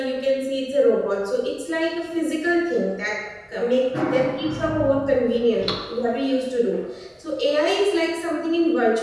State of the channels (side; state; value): both; identical; correlation 1.00